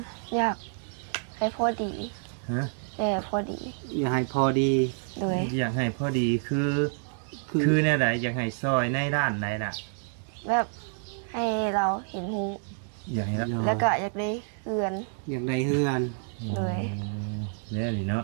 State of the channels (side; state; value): left; silent; 59 dB below the other